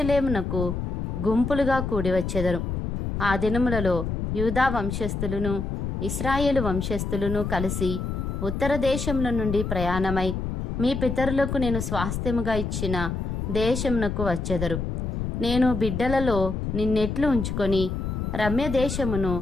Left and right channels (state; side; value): noise; left; rumble, 3 dB below the sound